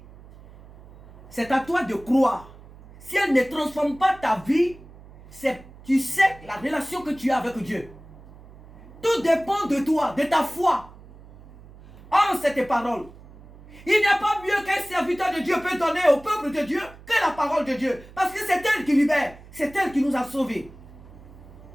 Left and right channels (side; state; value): right; noise; hum, 20 dB below the sound